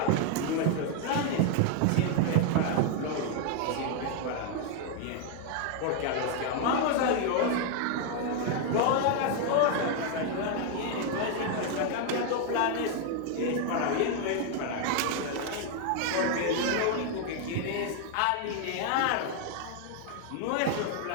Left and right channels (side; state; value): both; different; correlation 0.00